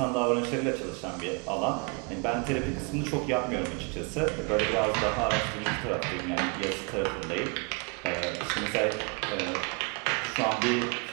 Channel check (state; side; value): quieter; left; 33.8 dB